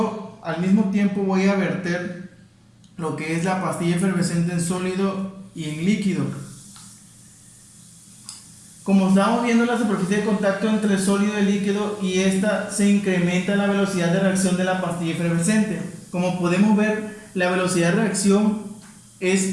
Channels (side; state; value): both; identical; correlation 1.00